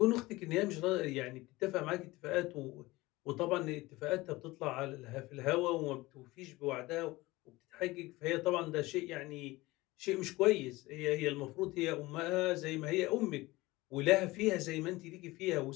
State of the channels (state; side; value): quieter; right; 20.2 dB